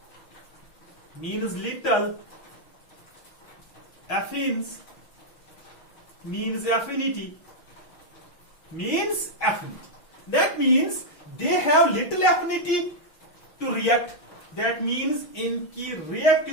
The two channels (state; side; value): late; right; 6.2 ms